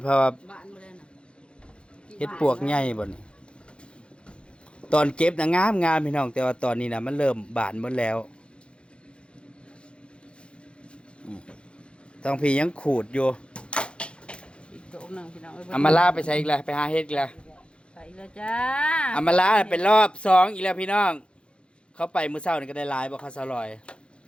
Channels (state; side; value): late; right; 0.057 ms